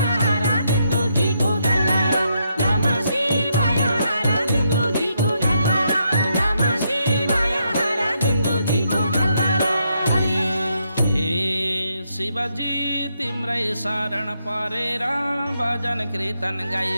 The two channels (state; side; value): inverted; both; correlation -0.78